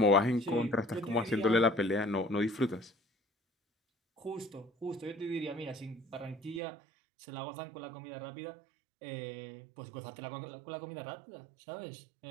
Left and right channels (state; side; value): drops out; left; at 6.6 s